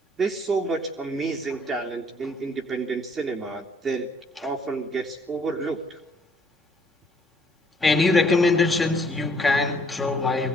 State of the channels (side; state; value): both; normal; correlation 0.64